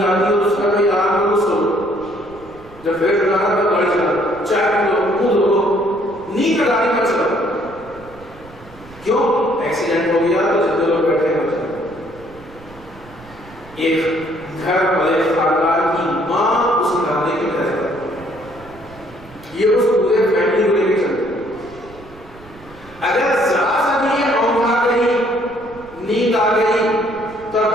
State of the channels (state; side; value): noise; right; rumble, 21 dB below the sound